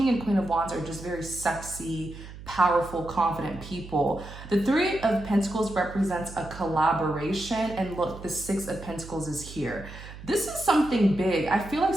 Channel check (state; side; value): noise; right; hum, 14 dB below the sound